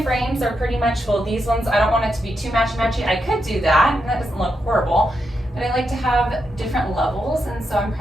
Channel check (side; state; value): both; normal; correlation 0.84